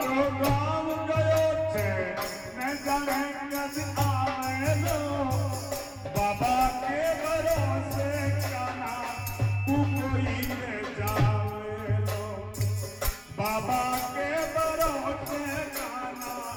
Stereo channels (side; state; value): both; identical; correlation 1.00